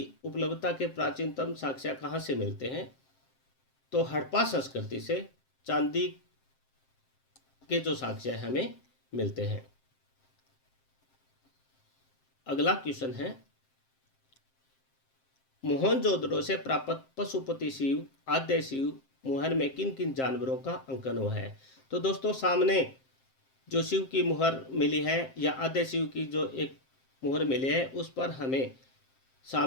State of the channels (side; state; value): right; late; 7.6 ms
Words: उपलब्धता के प्राचीनतम साक्ष्य कहाँ से मिलते हैं? तो हड़प्पा संस्कृति से चांदी के जो साक्ष्य हमें मिलते हैं। अगला क्वेश्चन है, मोहनजोदड़ो से प्राप्त पशुपति शिव, आद्य शिव मुहर में किन किन जानवरों का अंकन हुआ है? तो दोस्तों सामने जो शिव की मुहर मिली है या आद्य शिव की जो एक मोहर मिले हैं उस पर हमें